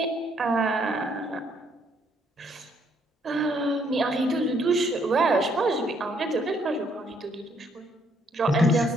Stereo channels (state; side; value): normal; both; correlation 0.69